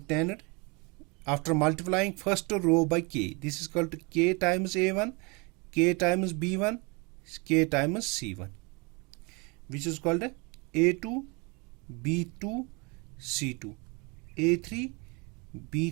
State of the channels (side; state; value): left; quieter; 29.4 dB